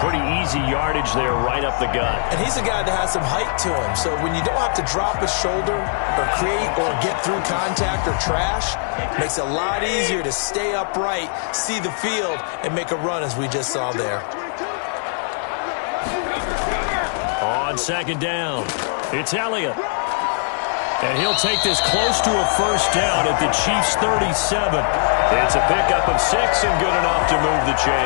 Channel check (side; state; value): right; silent; digital silence